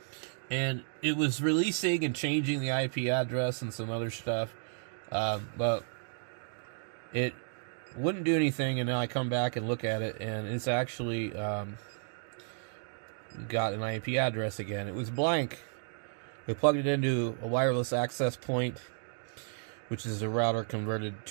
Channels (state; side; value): silent; left; 56 dB below the other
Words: And it was releasing and changing the IP address and some other stuff, but it wouldn't do anything. And now I come back and look at it, and it's actually got an IP address again. It was blank. We plugged it into a wireless access point, which is a router converted